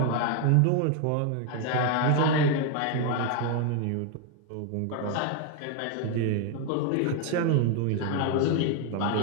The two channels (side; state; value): both; different; correlation 0.01